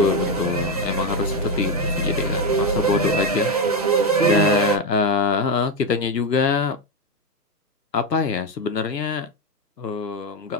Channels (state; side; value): normal; both; correlation 0.09